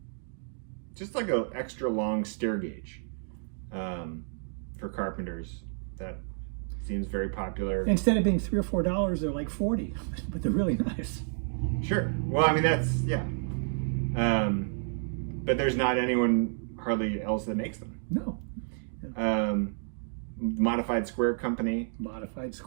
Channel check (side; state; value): left; silent; 58 dB below the other